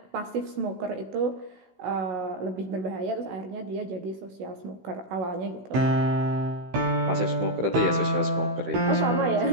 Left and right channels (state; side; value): late; left; 16 ms